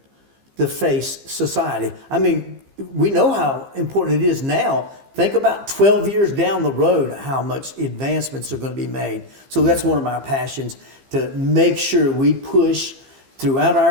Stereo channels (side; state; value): left; late; 15 ms